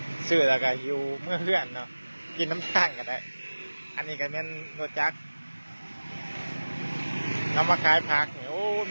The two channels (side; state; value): both; inverted; correlation -1.00